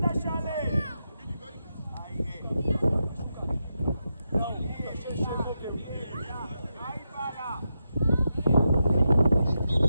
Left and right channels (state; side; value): inverted; both; correlation -0.86